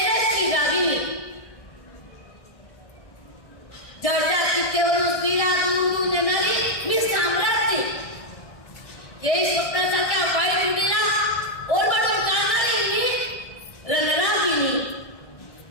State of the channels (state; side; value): late; right; 1.6 ms